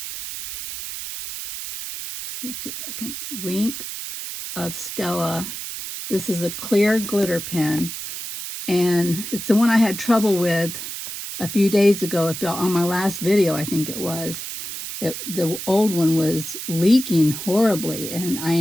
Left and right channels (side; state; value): right; noise; hiss, 7 dB below the sound